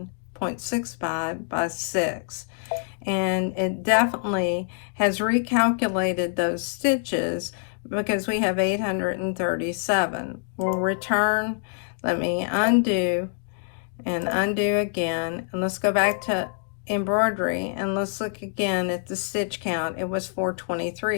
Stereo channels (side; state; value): right; silent; digital silence